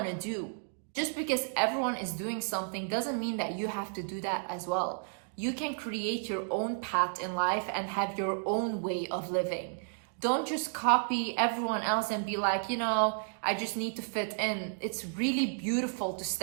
to do. Just because everyone is doing something doesn't mean that you have to do that as well. You can create your own path in life and have your own way of living. Don't just copy everyone else and be like, I just need to fit in. It's really beautiful to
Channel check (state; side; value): silent; left; digital silence